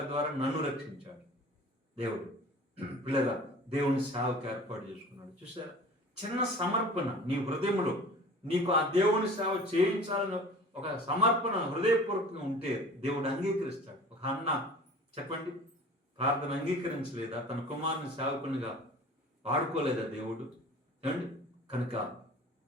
ద్వారా నన్ను రక్షించాడు దేవుడు. పిల్లగా దేవుని సేవకు ఏర్పాటు చేసుకున్నాడు. చూసారా, చిన్న సమర్పణ నీ హృదయంలో, నీకు ఆ దేవుని సేవ చేయించాలని ఒక సమర్పణ హృదయపూర్వకంగా ఉంటే దేవుడు అంగీకరిస్తాడు. ఒక అన్న చెప్పండి, ప్రార్థన అంగీకరించలేదా? తన కుమారుని సేవకునిగా వాడుకోలేదా దేవుడు? ఏమండి, కనుక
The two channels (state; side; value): normal; both; correlation 0.43